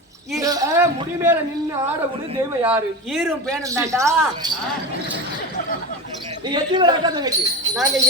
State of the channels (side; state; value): both; normal; correlation 0.25